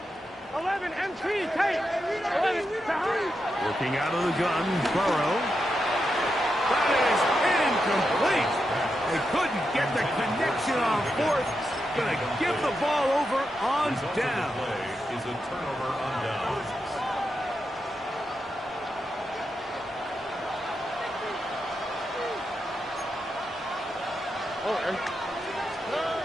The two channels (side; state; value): both; normal; correlation 0.86